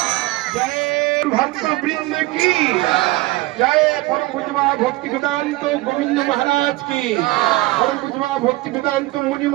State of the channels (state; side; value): quieter; left; 20.0 dB